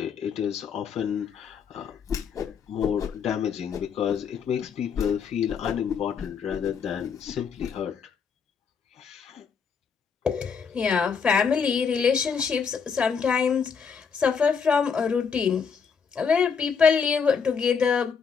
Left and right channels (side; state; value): right; quieter; 6.3 dB